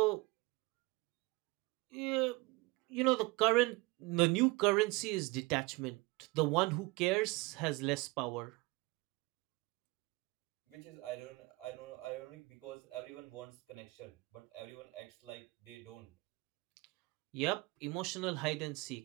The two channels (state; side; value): quieter; left; 24.1 dB